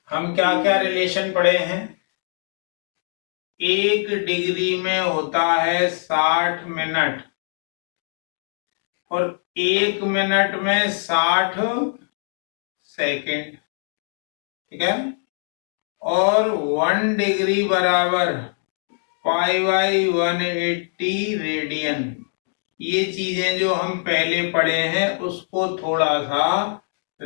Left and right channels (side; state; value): right; silent; digital silence